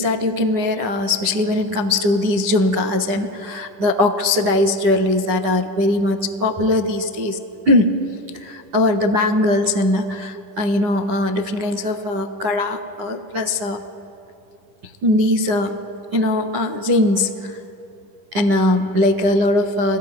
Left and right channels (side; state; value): left; late; 10 ms